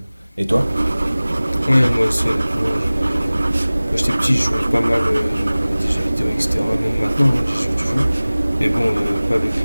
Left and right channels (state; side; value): inverted; both; correlation -0.99